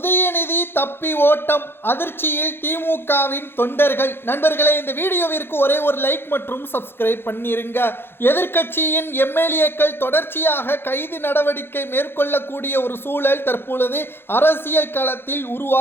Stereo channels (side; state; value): right; late; 0.11 ms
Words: தப்பி ஓட்டம், அதிர்ச்சியில் திமுகவின் தொண்டர்கள். நண்பர்களே, இந்த வீடியோவிற்கு ஒரே ஒரு லைக் மற்றும் சப்ஸ்கிரைப் பண்ணிருங்க. எதிர்க்கட்சியின் எம்எல்ஏக்கள் தொடர்ச்சியாக கைது நடவடிக்கை மேற்கொள்ளக்கூடிய ஒரு சூழல் தற்பொழுது அரசியல் களத்தில்